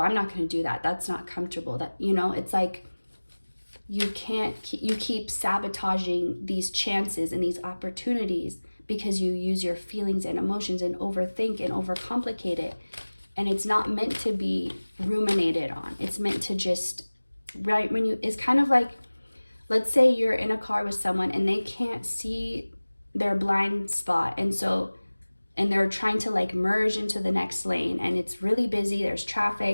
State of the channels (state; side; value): inverted; both; correlation -1.00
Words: not going to do that. That's not comfortable. That, it's like, you keep sabotaging these chances and these opportunities because you use your feelings and emotions and overthink and overcomplicate it. And it's not meant to be ruminated on. It's meant to just, right, it's kind of like, let's say you're in a car with someone and they can't see their blind spot. And they're trying to like merge into the next lane and it's really busy, there's